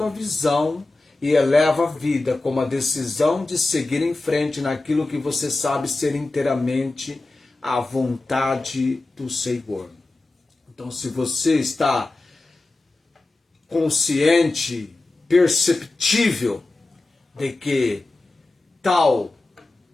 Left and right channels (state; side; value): quieter; right; 3.1 dB